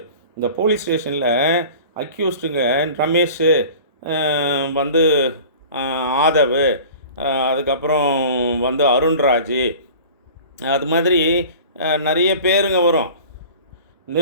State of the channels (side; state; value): both; inverted; correlation -0.41